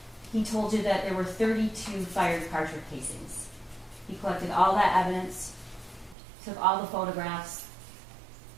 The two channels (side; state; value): left; drops out; at 6.2 s